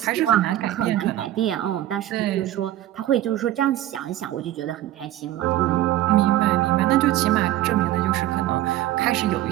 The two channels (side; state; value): left; quieter; 14.0 dB